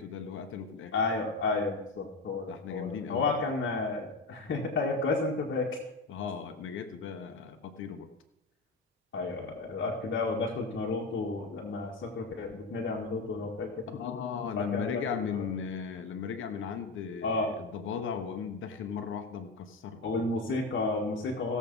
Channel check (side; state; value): right; quieter; 3.6 dB